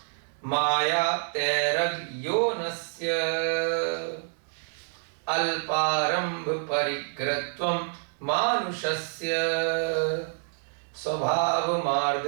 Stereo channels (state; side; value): silent; left; 60 dB below the other